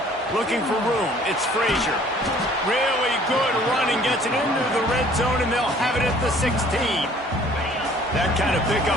Looking for room, it's Frazier. Really good running, gets it into the red zone, and they'll have it at the 16. That kind of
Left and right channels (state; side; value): normal; both; correlation 0.55